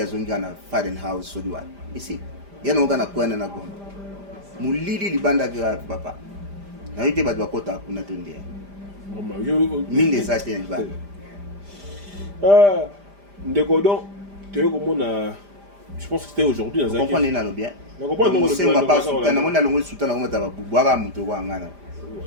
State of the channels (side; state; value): left; late; 5.0 ms